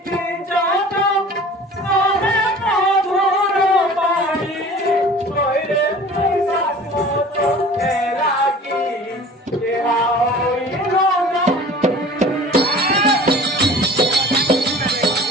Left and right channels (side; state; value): both; normal; correlation 0.44